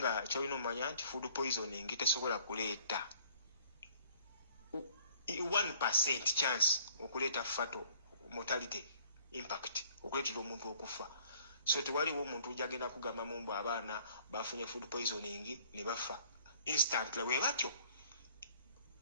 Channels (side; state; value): both; inverted; correlation -0.57